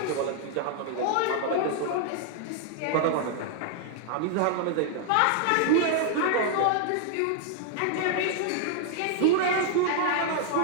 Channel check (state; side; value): different; both; correlation 0.00